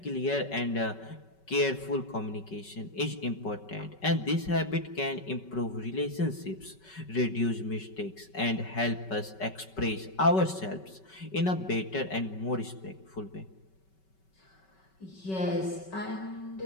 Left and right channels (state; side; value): late; right; 5.3 ms